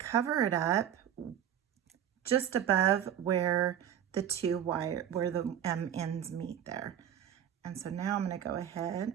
it up just above where the ends meet there. And so now I'm going to go ahead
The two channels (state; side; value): quieter; left; 9.8 dB